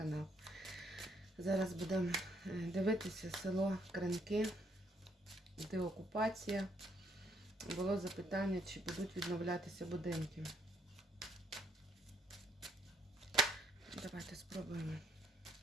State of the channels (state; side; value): normal; both; correlation 0.71